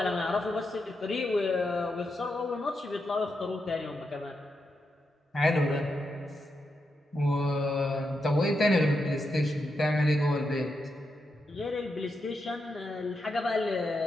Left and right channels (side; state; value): both; normal; correlation 0.85